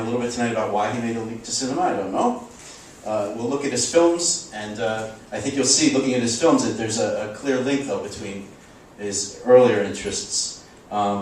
little bit tonight about why he made a leap to cinema. I don't know. We'll look at his films, and I think you'll see, looking at his films, that there's a clear link, though, between his earlier interests.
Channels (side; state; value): both; identical; correlation 1.00